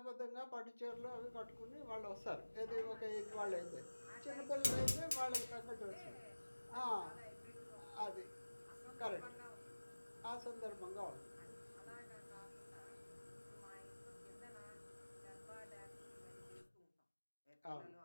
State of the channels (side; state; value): both; inverted; correlation -1.00